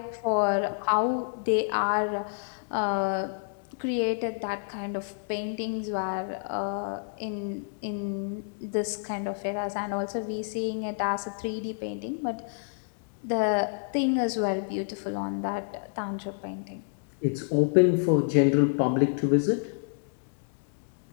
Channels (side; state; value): right; silent; digital silence